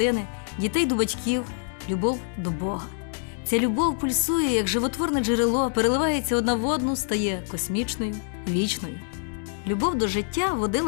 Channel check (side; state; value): right; silent; 59 dB below the other